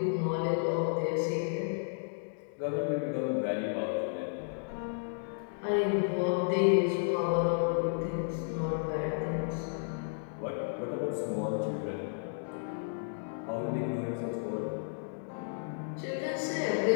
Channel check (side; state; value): right; silent; digital silence